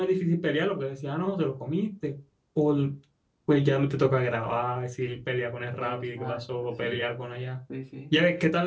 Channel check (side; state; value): both; identical; correlation 1.00